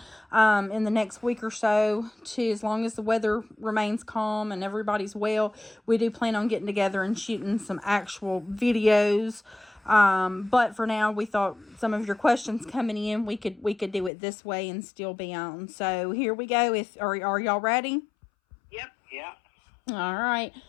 in the next week or so, to, as long as the weather remains calm and everybody's well, we do plan on getting together and shooting some actual videos. But for now, we thought some of your questions coming in, we could do it this way and still be on. So here we go. Are y'all ready? Yep. Yeah. All right.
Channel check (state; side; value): drops out; right; at 14.1 s